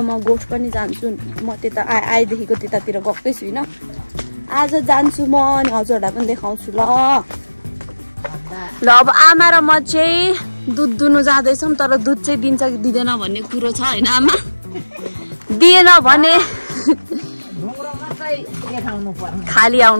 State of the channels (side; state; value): both; inverted; correlation -1.00